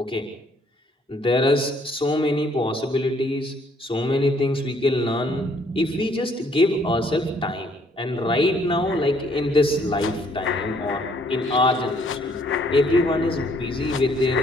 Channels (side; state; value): both; normal; correlation 0.65